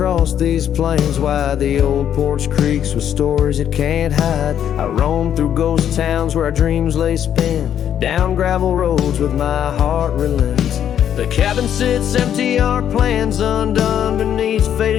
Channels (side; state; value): right; quieter; 9.7 dB